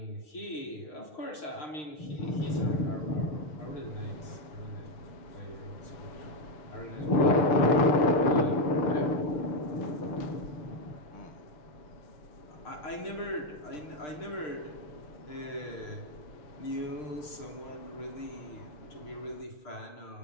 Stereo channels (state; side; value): late; right; 6.6 ms